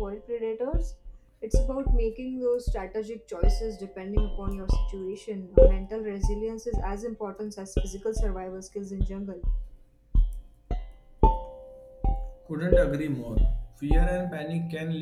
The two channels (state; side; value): identical; both; correlation 1.00